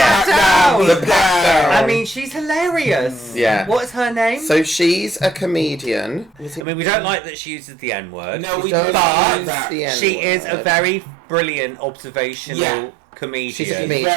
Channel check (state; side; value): drops out; left; at 6.7 s